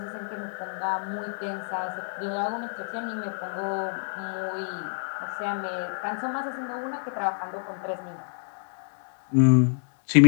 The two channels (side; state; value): right; silent; digital silence